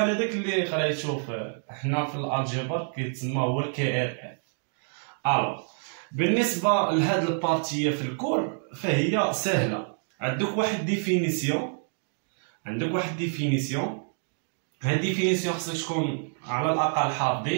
هذاك اللي قريتو حنا في الالجبر كيتسمى هو الكي ار اف. الو بالنسبه لهاد البارتيه في الكور فهي سهله. عندك واحد ديفينيسيون هاد ديفينيسيون خصك تكون على الاقل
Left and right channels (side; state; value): left; silent; 59 dB below the other